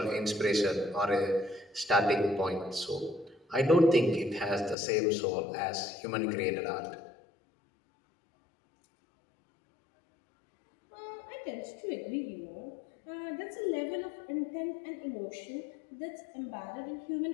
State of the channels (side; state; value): right; drops out; at 4.8 s